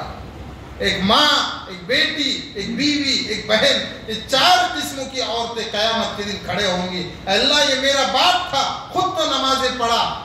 ایک ماں، ایک بیٹی، ایک بیوی، ایک بہن، یہ 4 قسموں کی عورتیں قیامت کے دن کھڑے ہوں گی۔ اللہ یہ میرا باپ تھا، خود تو نمازیں پڑھا،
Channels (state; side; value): identical; both; correlation 1.00